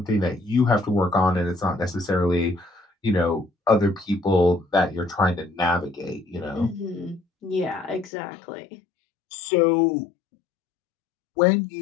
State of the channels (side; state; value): right; drops out; at 8.1 s